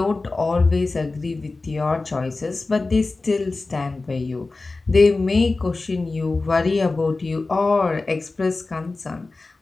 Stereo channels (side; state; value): right; quieter; 3.5 dB